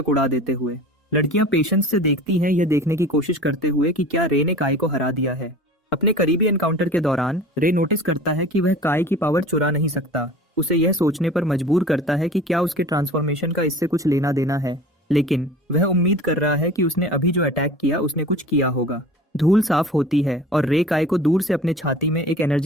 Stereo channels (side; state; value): both; normal; correlation 0.41